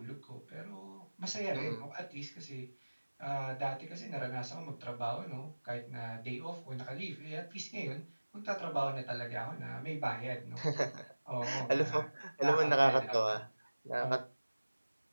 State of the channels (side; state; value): both; inverted; correlation -1.00